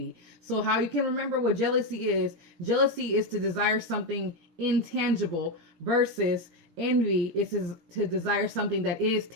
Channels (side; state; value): left; late; 17 ms